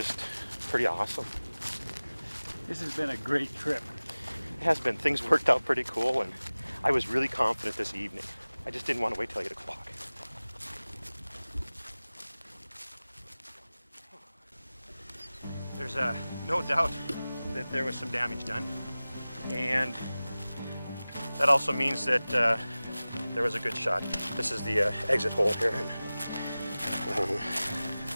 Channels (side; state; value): both; inverted; correlation -0.98